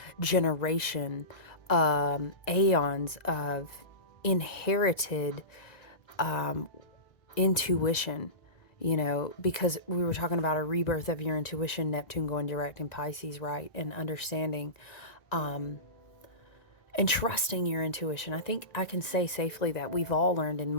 generation, aeons of inherited intuition, you know, because we were talking about a rebirth of your intuition, Neptune going direct in Pisces, right? And understanding and trusting your intuition. I think I can say safely that we've all learned in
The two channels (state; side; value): late; right; 1.9 ms